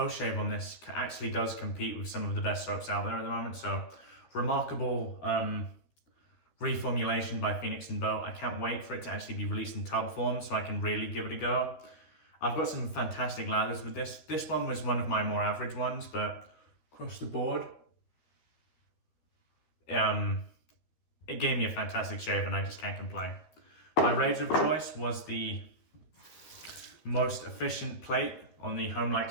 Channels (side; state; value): right; late; 13 ms